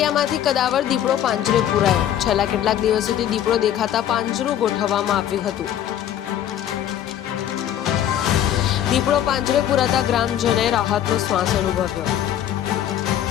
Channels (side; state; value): right; quieter; 10.9 dB